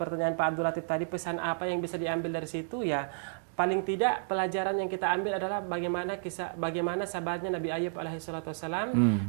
Pak Abdul Latif tadi, pesan apa yang bisa diambil dari situ ya? Paling tidak pelajaran yang kita ambil adalah bagaimana sabarnya Nabi Ayub alaihi wassalam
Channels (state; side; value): silent; left; digital silence